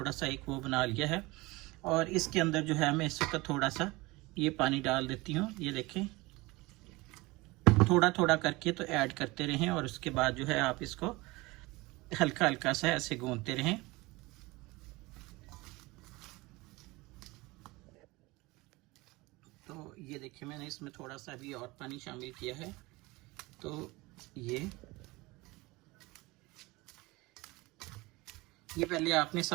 सा एक वो बना लिया है और इसके अंदर जो है मैं इस वक्त थोड़ा सा ये पानी डाल देती हूँ। ये देखें, थोड़ा थोड़ा करके तो ऐड करते रहें और उसके बाद जो है आप इसको हल्का हल्का सा ऐसे गूंदते रहें। तो ये देखिए मैंने इसमें थोड़ा सा भी और पानी शामिल किया है। तो ये पहले आपने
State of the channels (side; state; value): left; quieter; 22.3 dB